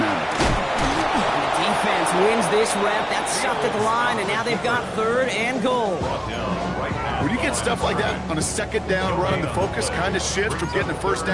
matter. And the defense wins this rep. That's stopped at the line, and now they've got 3rd and goal. When you get stuff like that on a 2nd down run, the focus kind of shifts from getting a 1st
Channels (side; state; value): both; identical; correlation 1.00